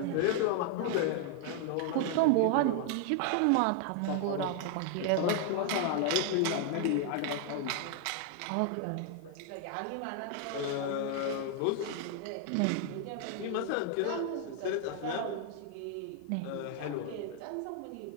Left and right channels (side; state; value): both; different; correlation 0.00